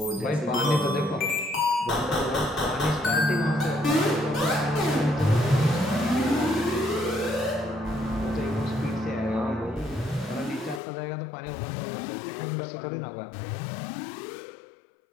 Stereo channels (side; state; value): right; drops out; at 10.8 s